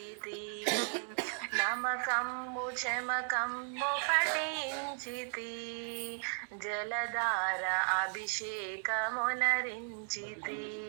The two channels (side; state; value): left; silent; 54 dB below the other